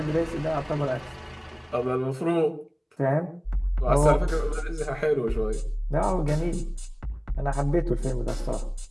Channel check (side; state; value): both; identical; correlation 1.00